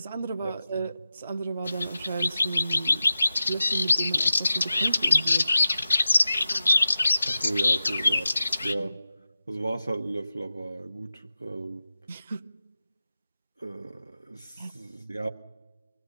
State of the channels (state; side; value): inverted; both; correlation -0.93